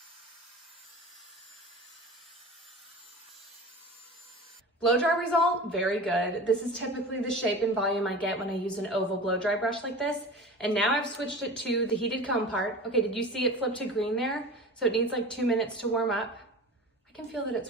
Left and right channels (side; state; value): both; normal; correlation 0.35